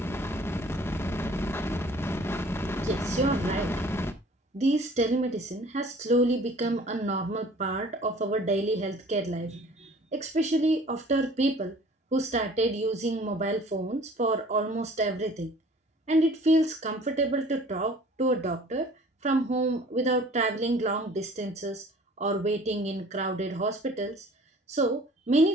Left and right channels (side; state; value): both; normal; correlation 0.50